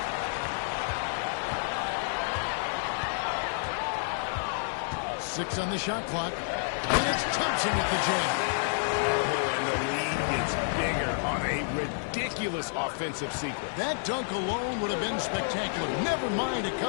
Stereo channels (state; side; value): silent; right; digital silence